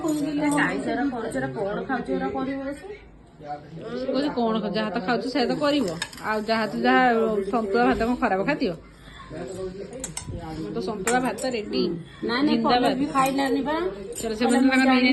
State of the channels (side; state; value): both; identical; correlation 1.00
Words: କଣ ଯାହା ତ ଖାଉଛୁ ସେୟା ତ କରିବ ଆଉ ଯାହା ସନ୍ତୁଳା ଭାତ କଣ ଖରାପ ଖାଦ୍ୟ ତ ସନ୍ତୁଳା ଭାତ ରେଡି ନାଇଁ ଖାଇଲାନି ବା ଚଲ ସେମାନେ ତାଙ୍କର